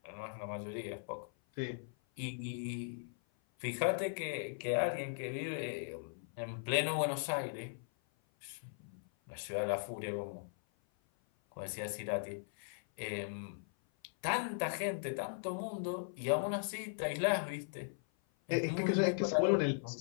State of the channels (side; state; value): right; silent; 52 dB below the other